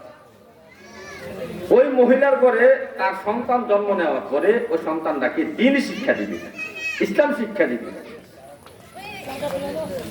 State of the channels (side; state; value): both; identical; correlation 1.00